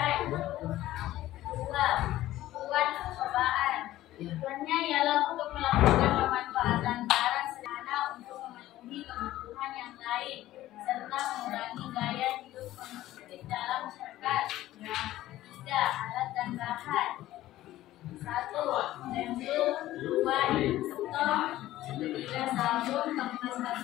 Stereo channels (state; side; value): quieter; right; 14.9 dB